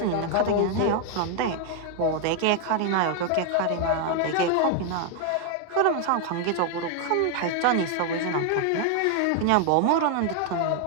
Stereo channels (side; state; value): both; different; correlation 0.01